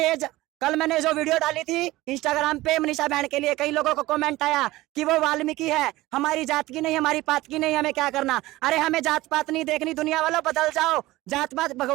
कल मैंने जो वीडियो डाली थी इंस्टाग्राम पे मनीषा बहन के लिए, कई लोगों को कमेंट आया कि वो वाल्मीकि है, हमारी जात की नहीं, हमारी पात की नहीं, हमें क्या करना। अरे हमें जात पात नहीं देखनी, दुनिया वालों बदल जाओ। जात पात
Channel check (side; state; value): left; quieter; 18.1 dB